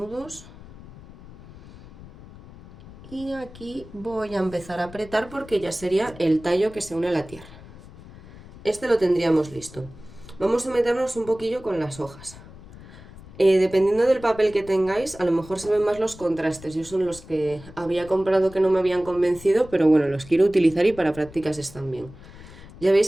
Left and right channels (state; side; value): noise; left; rumble, 18 dB below the sound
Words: Y aquí voy a empezar a apretar porque ya sería el tallo que se une a la tierra. Este lo tendríamos listo. Vamos a meternos un poquillo con las hojas. Dependiendo del papel que tengáis, a lo mejor se ven más los contrastes. Yo son los que había comprado que no me habían convencido, pero bueno, los quiero utilizar y para prácticas están bien. Ya